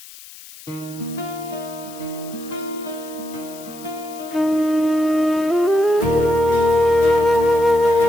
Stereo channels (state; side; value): noise; left; hiss, 18 dB below the sound